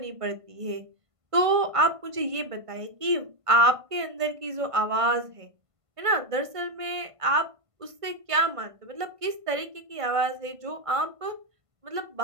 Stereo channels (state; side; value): late; left; 1.5 ms